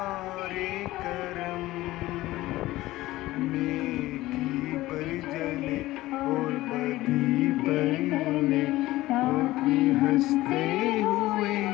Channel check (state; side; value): quieter; right; 17.3 dB